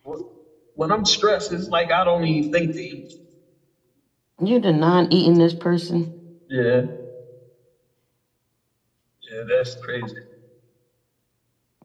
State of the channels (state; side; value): identical; both; correlation 1.00